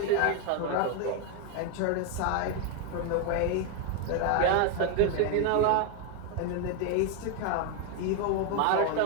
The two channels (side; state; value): both; different; correlation 0.01